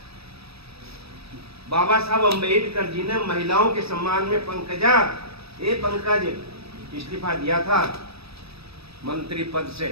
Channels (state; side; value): late; left; 0.77 ms